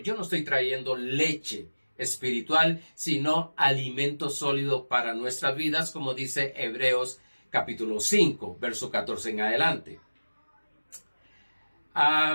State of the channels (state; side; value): inverted; both; correlation -1.00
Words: no estoy trayendo leche espiritual, sino alimento sólido para nuestras vidas, como dice Hebreos capítulo 5, verso 14 en adelante.